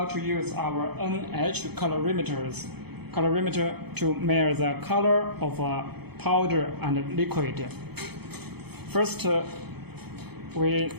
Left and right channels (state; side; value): late; left; 0.97 ms